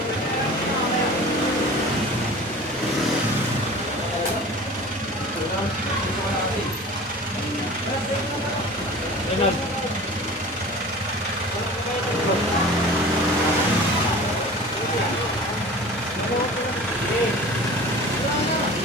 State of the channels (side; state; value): both; normal; correlation 0.40